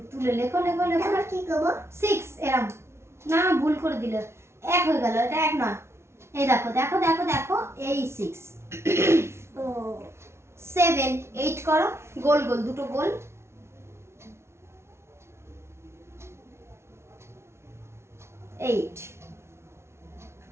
তুলে লেখো লেখো লেখো। এবার কি করব? 6, এরকম না, ভুল করে দিলে, 1 হয়ে গেল, এটা 1 নয়। এই দেখো দেখো দেখো দেখো, এই 6। ও 7, 8 করো, গোল গোল, দুটো গোল। 8,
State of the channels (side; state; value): left; late; 0.13 ms